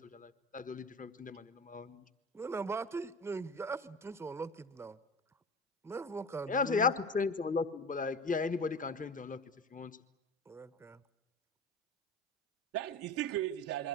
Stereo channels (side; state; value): both; normal; correlation 0.32